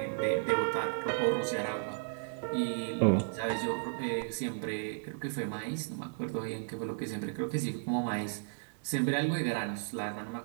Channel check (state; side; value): silent; left; 55 dB below the other